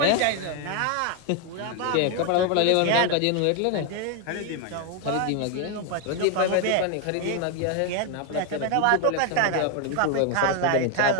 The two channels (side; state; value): both; different; correlation 0.01